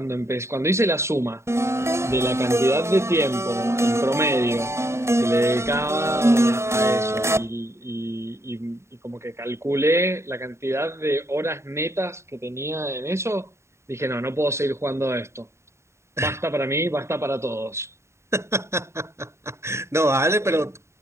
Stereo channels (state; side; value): late; left; 0.13 ms